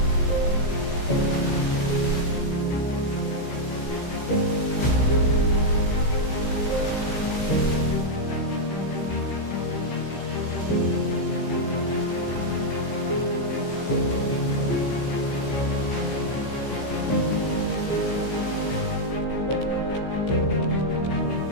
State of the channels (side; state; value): right; late; 15 ms